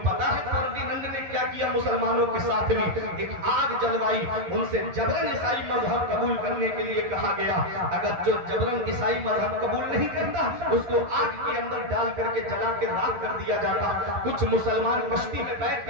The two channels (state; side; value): late; left; 11 ms